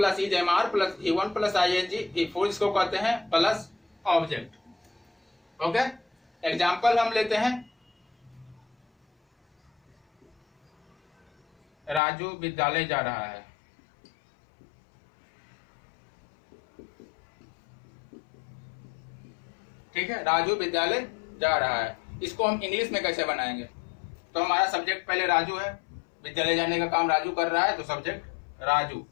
is am are plus V1 plus ING, V4 इसको कहते हैं प्लस ऑब्जेक्ट। ओके, एग्जाम्पल हम लेते हैं, राजू विद्यालय जा रहा है, ठीक है, राजू विद्यालय जा रहा है। इसको हम इंग्लिश में कैसे बनाएंगे, तो हमारा सब्जेक्ट पहले राजू है, विद्यालय जाने का काम राजू कर रहा है, तो सब्जेक्ट राजू,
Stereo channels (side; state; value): right; drops out; at 12.0 s